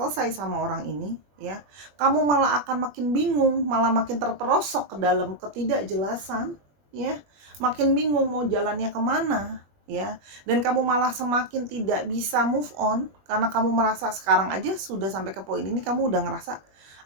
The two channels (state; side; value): late; left; 20 ms